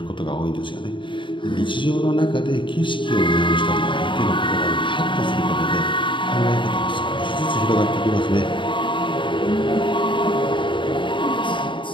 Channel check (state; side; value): late; right; 0.24 ms